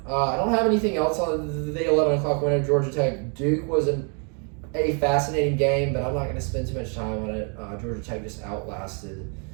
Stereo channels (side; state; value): left; quieter; 38.5 dB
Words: I don't have anything else on the 11 o'clock winner. Georgia Tech Duke was a fascinating game, but I'm not going to spend too much time on it. Georgia Tech just outlasted